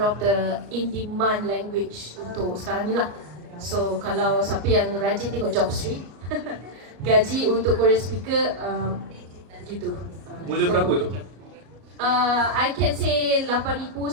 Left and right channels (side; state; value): left; late; 33 ms